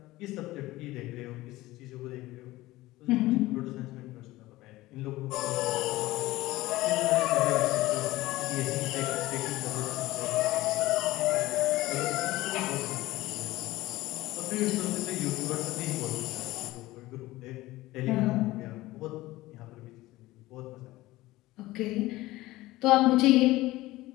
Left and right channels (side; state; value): right; quieter; 18.0 dB